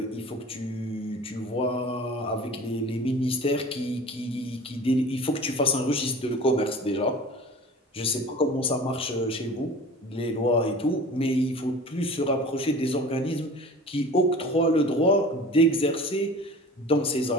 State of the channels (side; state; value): both; normal; correlation 0.40